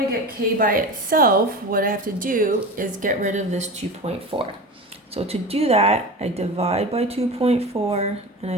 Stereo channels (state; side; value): normal; both; correlation 0.29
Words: to get k by itself, what I have to do is get rid of this 2.4. So to do that, I divide by 2.4 and I